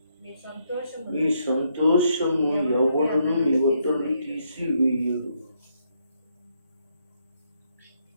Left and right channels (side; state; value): both; inverted; correlation -0.75